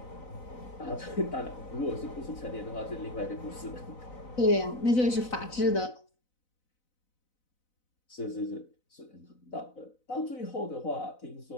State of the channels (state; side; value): late; right; 4.0 ms